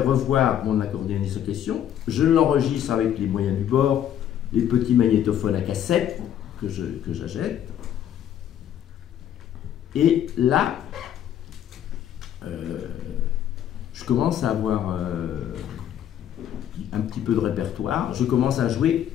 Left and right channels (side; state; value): right; quieter; 10.4 dB